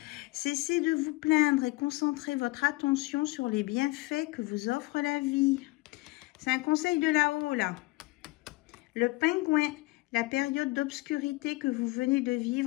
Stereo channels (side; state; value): right; quieter; 22.5 dB